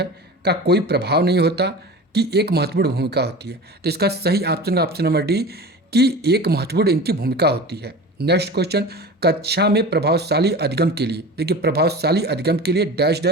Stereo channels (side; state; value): both; normal; correlation 0.34